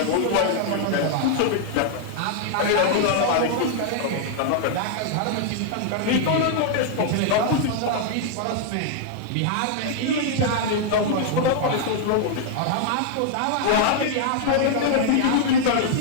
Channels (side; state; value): both; different; correlation 0.00